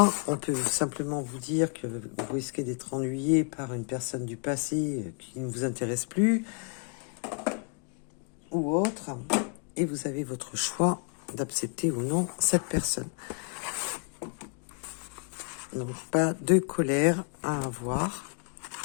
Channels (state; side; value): quieter; right; 39.2 dB